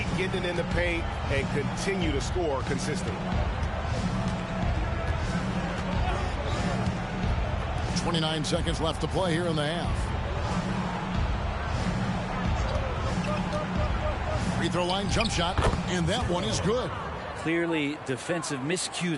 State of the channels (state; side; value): identical; both; correlation 1.00